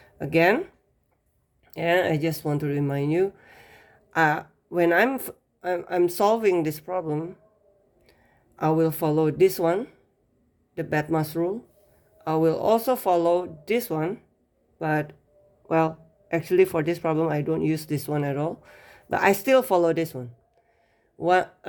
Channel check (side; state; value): both; identical; correlation 1.00